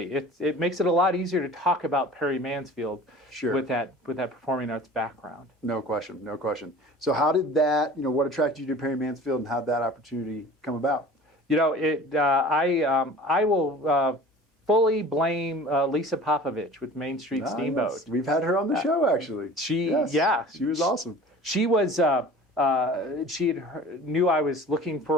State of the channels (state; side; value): normal; both; correlation 0.43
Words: It makes it a lot easier to talk about Perry Mansfield with that performing arts background. No question, no question. So how did that, what attracted you to Perry Mansfield, and how did that opportunity come about? I will fully blame Lisa Popovich with Main Street Steamboat. We've had her on the show, actually. She was awesome. she was knew I was looking